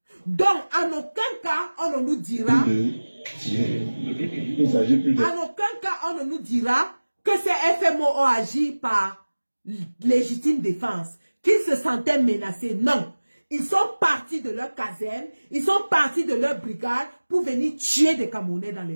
Donc, en aucun cas, on ne nous dira... Il s'agit plus de... En aucun cas, on ne nous dira que ces FMO ont agi par légitime défense, qu'ils se sentaient menacés. Non. Ils sont partis de leur caserne, ils sont partis de leur brigade pour venir tuer des Camerounais dans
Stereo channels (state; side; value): inverted; both; correlation -1.00